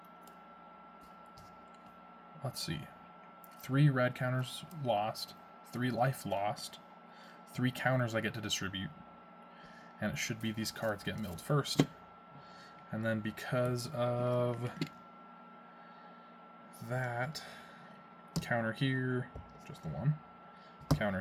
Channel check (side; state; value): both; identical; correlation 1.00